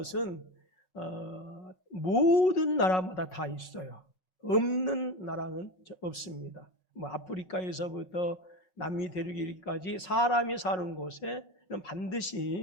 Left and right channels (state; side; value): late; right; 5.4 ms